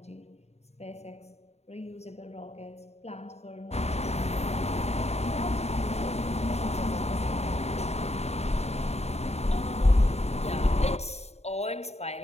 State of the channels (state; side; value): late; right; 0.31 ms